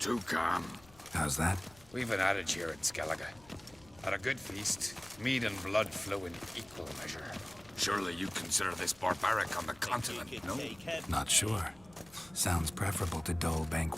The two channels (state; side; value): noise; left; rumble, 25 dB below the sound